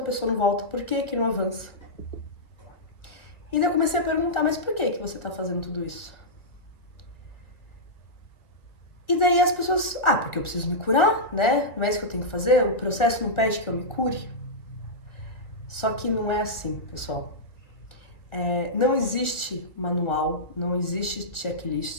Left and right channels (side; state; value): right; late; 1.6 ms